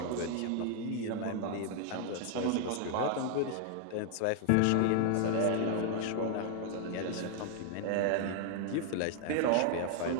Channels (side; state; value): both; different; correlation 0.00